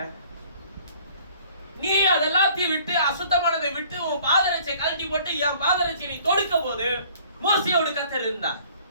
நீ அதெல்லாத்தையும் விட்டு அசுத்தமானதை விட்டு உன் பாதரட்சை கழட்டி போட்டு என் பாதரட்சை நீ தொடுக்க போது மோசையோடு கர்த்தர் இருந்தார்.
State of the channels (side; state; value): both; inverted; correlation -0.55